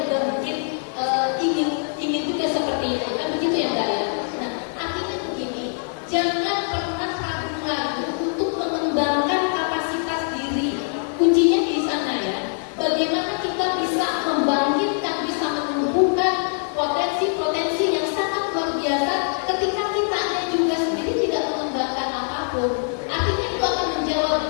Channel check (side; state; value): right; silent; 63 dB below the other